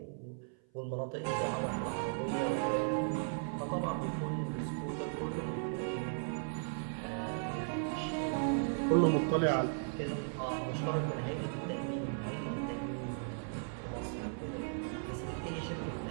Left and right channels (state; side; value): silent; left; 53 dB below the other